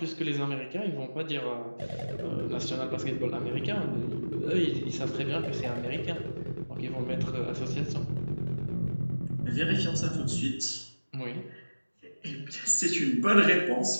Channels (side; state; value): both; inverted; correlation -1.00